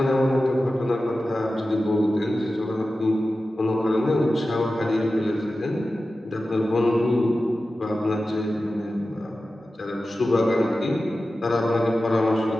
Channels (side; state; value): both; normal; correlation 0.94